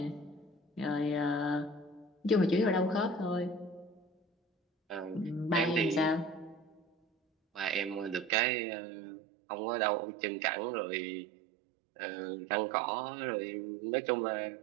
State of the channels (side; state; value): left; drops out; at 8.3 s